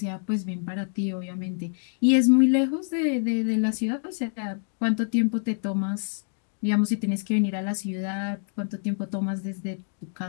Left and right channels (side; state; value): right; silent; 61 dB below the other